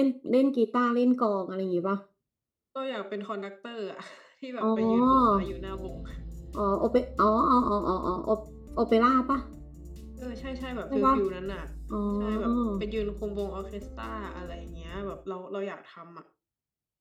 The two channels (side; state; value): both; identical; correlation 1.00